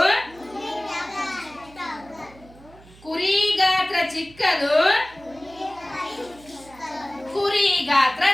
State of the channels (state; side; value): noise; right; hum, 24 dB below the sound